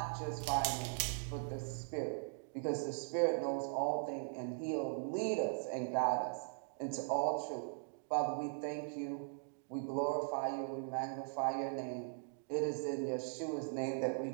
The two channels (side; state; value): left; silent; digital silence